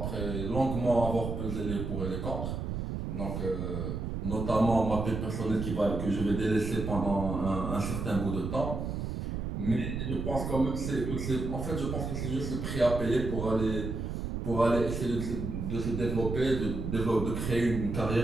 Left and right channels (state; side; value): noise; right; rumble, 3 dB below the sound